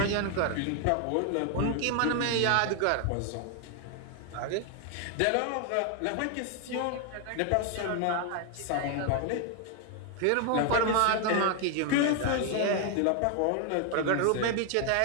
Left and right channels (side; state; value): both; different; correlation 0.00